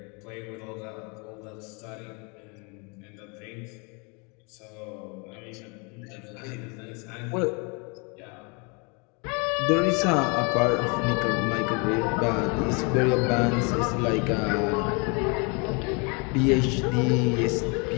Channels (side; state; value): right; quieter; 32.5 dB